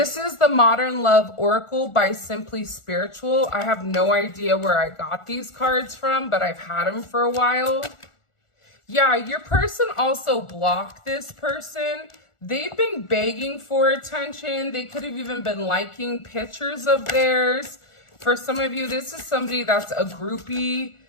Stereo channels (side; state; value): right; late; 1.4 ms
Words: is the Modern Love Oracle by Simply Spiritual. I have no idea where I got these cards from, but I've had them for a while. Yeah, your person also blocked this person. They've been begging for attention. They could have even been liking pictures of theirs. For some of you, this is somebody that's a groupie.